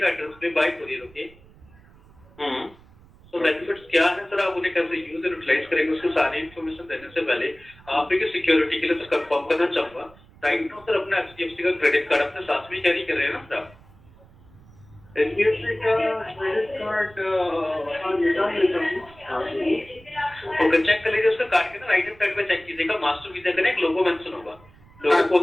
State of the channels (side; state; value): right; noise; rumble, 25 dB below the sound